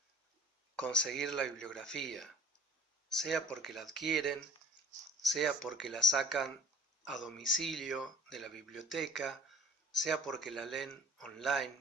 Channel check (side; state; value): both; normal; correlation 0.51